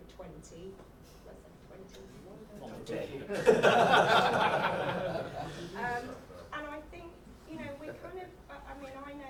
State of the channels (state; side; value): identical; both; correlation 1.00